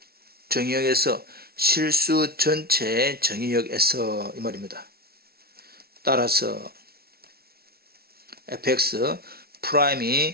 정의역에서? 실수 전체 정의역에서 이 말입니다. 따라서 fx 프라임이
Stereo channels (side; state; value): left; late; 0.44 ms